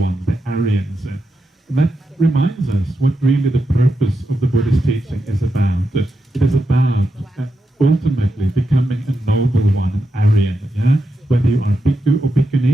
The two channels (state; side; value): normal; both; correlation 0.87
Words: the Aryans. And that reminds us what really the purpose of the Buddhist teaching is about. It is about ultimately becoming a noble one, an Aryan. Yeah? Whether you are bhikkhu or